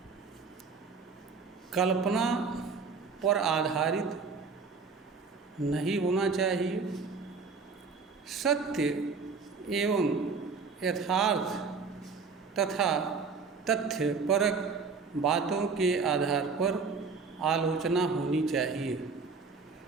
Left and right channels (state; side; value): quieter; left; 4.8 dB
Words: कल्पना पर आधारित नहीं होना चाहिए, सत्य एवं यथार्थ तथा तथ्यपरक बातों के आधार पर आलोचना होनी चाहिए।